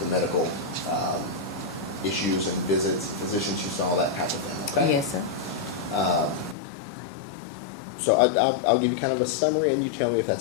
medical issues and visits, and physicians you saw, that type of thing, okay? Yes, sir. So I'll give you kind of a summary and you tell me if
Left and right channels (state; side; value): drops out; right; at 6.6 s